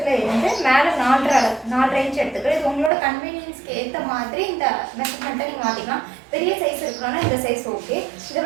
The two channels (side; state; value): left; drops out; at 2.9 s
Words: இருந்து மேலே 4.5 இன்ச் எடுத்துக்கிறோம். இது உங்களோட கன்வீனியன்ஸ்க்கு ஏற்ற மாதிரி இந்த மெஷர்மெண்ட்டை நீங்கள் மாற்றிக்கலாம். பெரிய சைஸ் இருக்கணும்னா இந்த சைஸ் ஓகே. இதை